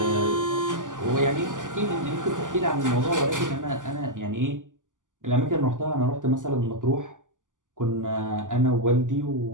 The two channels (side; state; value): left; late; 0.87 ms